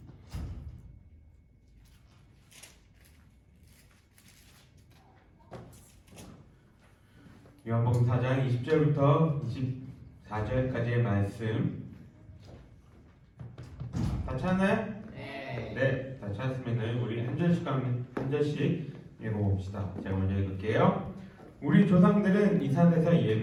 요한복음 4장 20절부터 24절까지의 말씀 다 찾나요? 네, 다 찾았으면 우리 한 절씩 읽어봅시다. 제가 먼저 읽을게요. 우리 조상들은 이 산에서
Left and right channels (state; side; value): identical; both; correlation 1.00